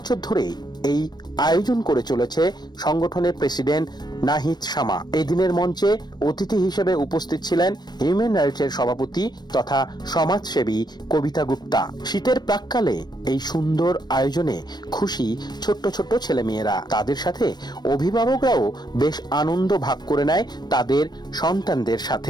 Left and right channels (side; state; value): right; late; 0.20 ms